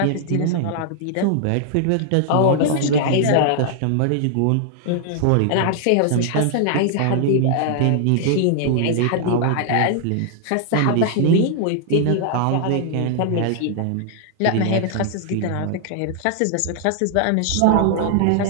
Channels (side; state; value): both; different; correlation 0.00